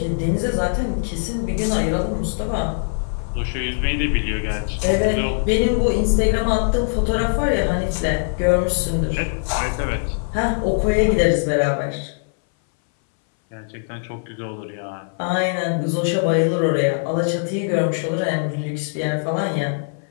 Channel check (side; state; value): right; silent; 61 dB below the other